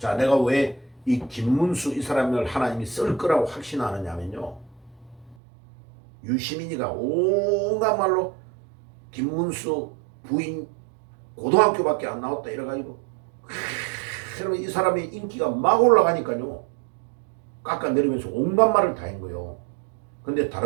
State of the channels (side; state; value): left; drops out; at 5.4 s